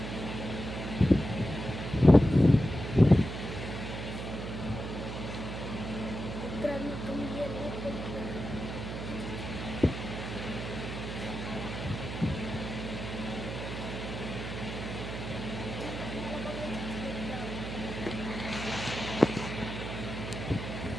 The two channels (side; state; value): right; noise; hum, 6 dB below the sound